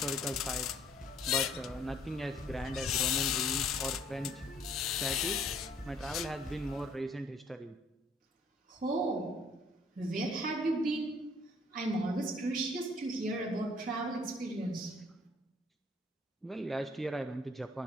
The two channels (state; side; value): normal; both; correlation 0.60